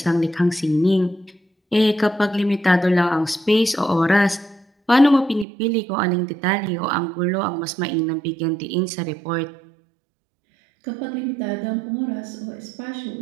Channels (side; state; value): left; drops out; at 5.5 s